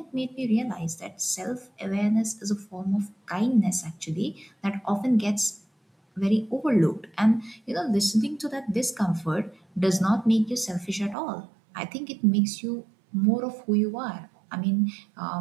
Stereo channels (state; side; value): drops out; left; at 11.2 s